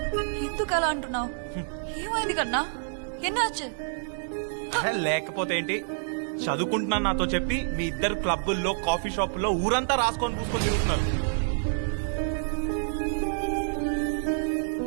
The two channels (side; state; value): left; silent; digital silence